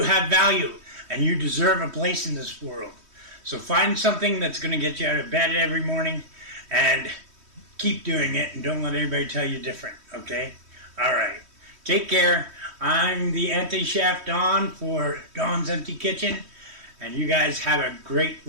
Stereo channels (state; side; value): late; left; 3.1 ms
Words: have value, and you deserve a place in this world. So find something that's going to get you out of bed every morning and keep doing it, and don't let anybody tell you different. Okay? All right. Take care. I'm the anti-chef Don for Don's Empty Kitchen. And you guys have a great